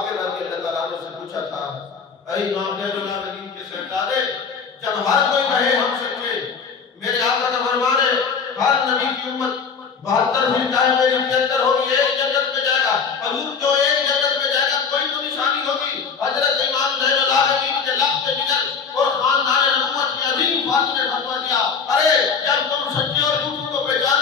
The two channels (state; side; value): quieter; right; 5.8 dB